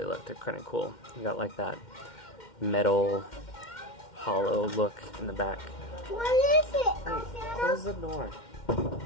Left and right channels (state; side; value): late; right; 2.1 ms